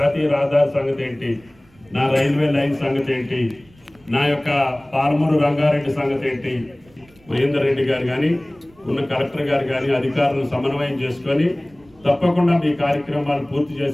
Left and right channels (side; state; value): right; noise; rumble, 29 dB below the sound